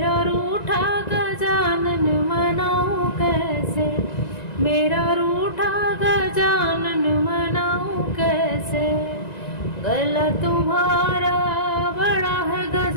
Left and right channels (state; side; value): late; right; 1.9 ms